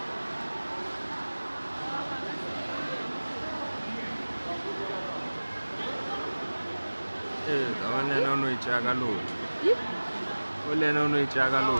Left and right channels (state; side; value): inverted; both; correlation -1.00